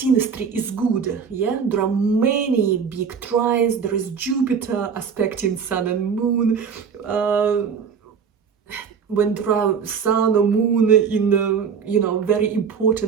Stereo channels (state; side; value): quieter; left; 6.5 dB